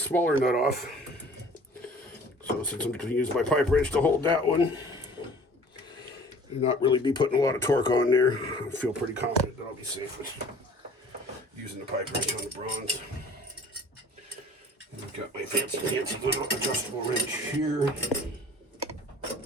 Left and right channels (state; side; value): normal; both; correlation 0.48